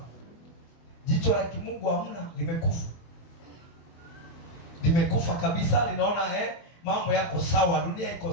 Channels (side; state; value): right; late; 24 ms